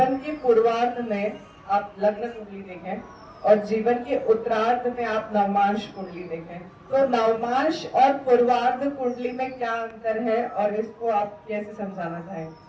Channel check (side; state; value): both; identical; correlation 1.00